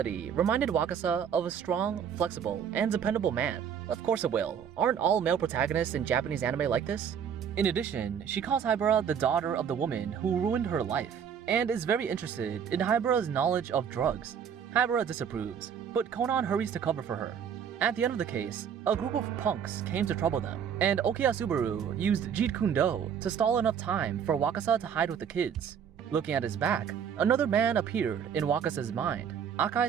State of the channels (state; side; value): quieter; left; 7.9 dB